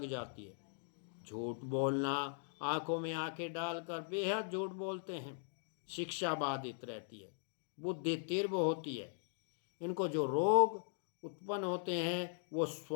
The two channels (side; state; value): right; silent; digital silence